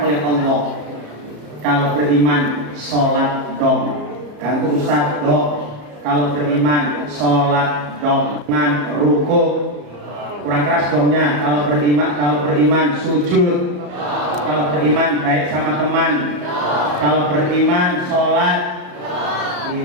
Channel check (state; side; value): late; left; 34 ms